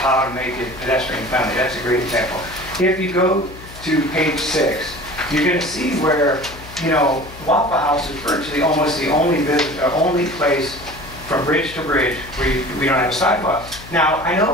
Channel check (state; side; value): noise; left; hum, 17 dB below the sound